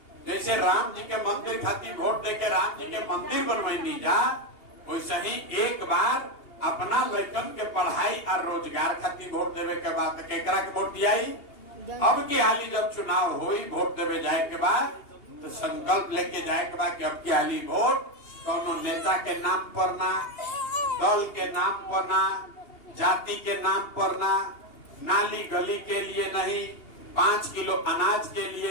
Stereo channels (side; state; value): right; late; 2.8 ms